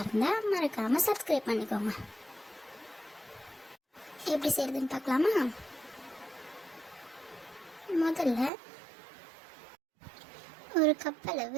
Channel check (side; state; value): left; drops out; at 8.5 s